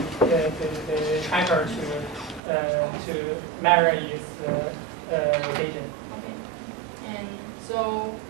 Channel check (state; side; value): drops out; left; at 2.4 s